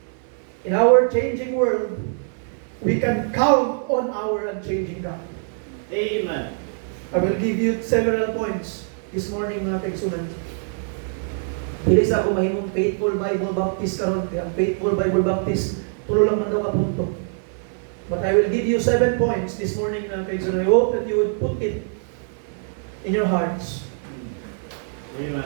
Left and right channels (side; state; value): left; silent; 62 dB below the other